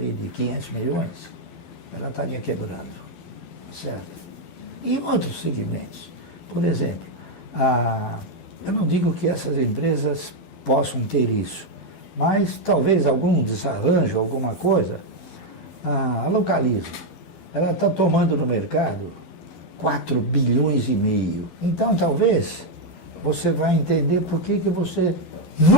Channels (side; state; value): right; late; 12 ms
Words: de 500 milhões, ela estaria quebrando. Tá certo? E outros segmentos. Por exemplo, eu não digo que essas empresas possam ter isso, mas talvez algum desarranjo, alguma coisa, a Localiza. Ela está tomando no mercado 4,5 bilhões. Então, talvez, você vai entender por que você